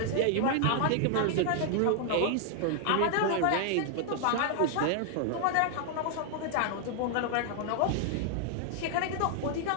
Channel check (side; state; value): both; different; correlation 0.00